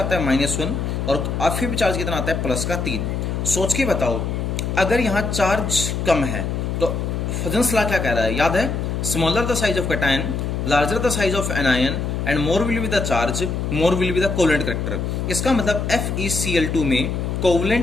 आता है -1 और Fe पे चार्ज कितना आता है +3। सोच के बताओ अगर यहाँ चार्ज कम है तो फजन्स लॉ क्या कह रहा है, याद है, smaller the size of cation, larger the size of anion and more will be the charge, more will be the covalent character. इसका मतलब FeCl2 में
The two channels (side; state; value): left; noise; hum, 2 dB below the sound